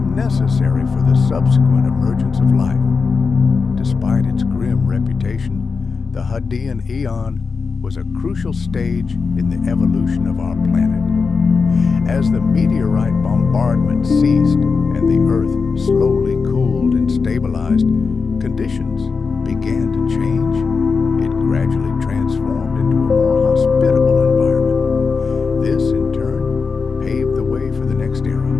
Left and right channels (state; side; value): quieter; right; 4.9 dB